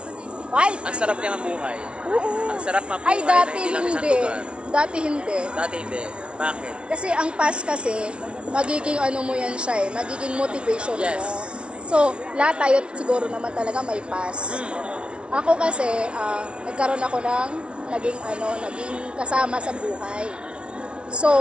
Right? ang sarap niya mabuhay. Oo. Ang sarap mabuhay Ay, dati na hindi lang isang hindi. lugar. Dati hindi. Dati hindi. Bakit? Kasi ang past kasi, magiging ano mo yan siya eh, magiging motivation Yes. mo. So, lahat tayo siguro naman talaga may past. Ako kasi, nagkaroon ako ng naging kasama sa buhay.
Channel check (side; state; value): left; late; 0.058 ms